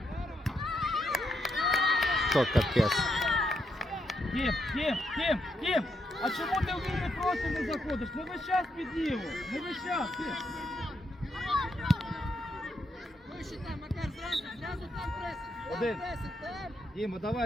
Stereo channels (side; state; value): both; normal; correlation 0.79